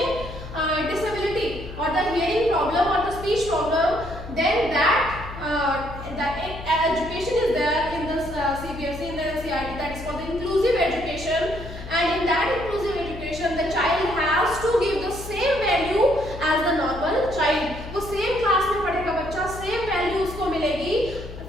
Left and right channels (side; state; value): left; noise; hum, 12 dB below the sound